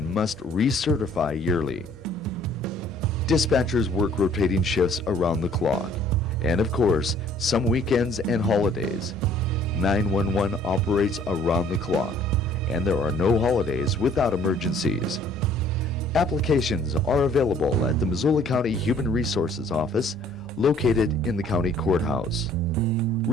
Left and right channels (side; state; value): both; normal; correlation 0.57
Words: must recertify yearly. Dispatchers work rotating shifts around the clock, and of course, some weekends and holidays. 911 operates around the clock, and there are no holidays without emergencies. Applications are available at the Missoula County Human Resources Office, located in the county courthouse.